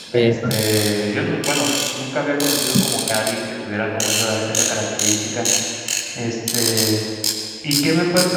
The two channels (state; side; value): identical; both; correlation 1.00